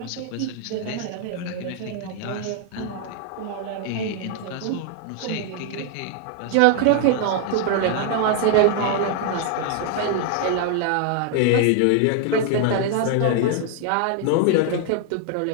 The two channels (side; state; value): both; different; correlation 0.00